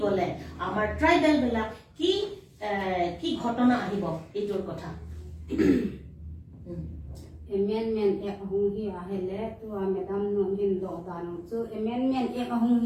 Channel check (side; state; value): both; identical; correlation 1.00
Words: গলে আমাৰ ট্ৰাইবেল বিলাক কি কি ঘটনা আহিব এইটোৰ কথা amendment ek hung hi ahele tu madam no hin do danu chu amendment ek hung